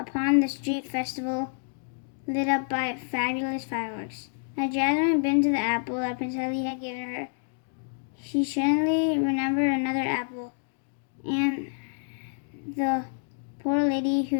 the street festival lit up by fabulous fireworks. As Jasmine bit into the apple that Prince Ali had given her, she suddenly remembered another apple and the poor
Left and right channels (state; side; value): silent; right; digital silence